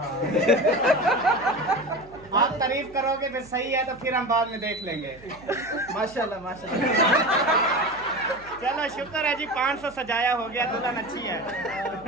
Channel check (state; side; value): noise; right; hum, 23 dB below the sound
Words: आप तारीफ करोगे फिर सही है तो फिर हम बाद में देख लेंगे। माशाल्लाह माशाल्लाह। चलो शुक्र है जी, 500 सजाया हो गया, दुल्हन अच्छी है। मैं